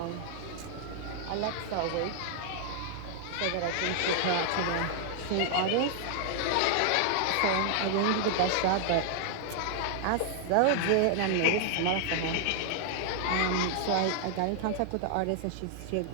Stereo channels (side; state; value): both; different; correlation 0.00